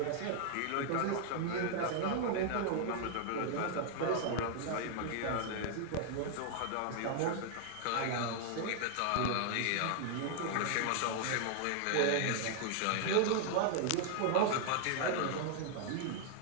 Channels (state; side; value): different; both; correlation 0.00